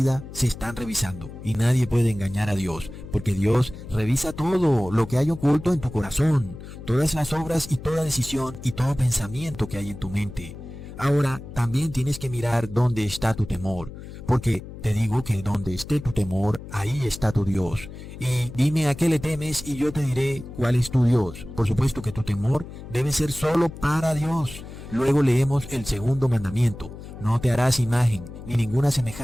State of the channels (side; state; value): left; noise; hum, 13 dB below the sound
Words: se están revisando, y nadie puede engañar a Dios, porque Dios revisa todo lo que hay oculto en tu corazón, todas las obras y toda decisión y todo pensamiento que hay en tu mente. Ahora, también tienes que mirar dónde está tu temor, porque te digo que donde esté tu temor, ahí está tu Dios. Y dime a qué le temes y yo te diré cuál es tu Dios. Por supuesto que tu temor debe ser solo para Dios. Luego leemos el segundo mandamiento. No te harás imagen, ni ninguna